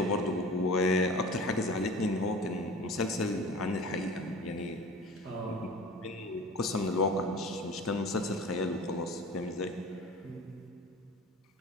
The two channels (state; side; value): normal; both; correlation 0.39